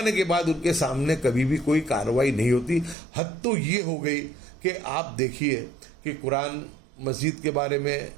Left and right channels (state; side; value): drops out; left; at 3.0 s